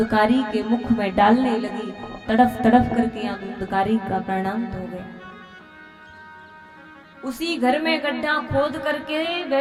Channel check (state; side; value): identical; both; correlation 1.00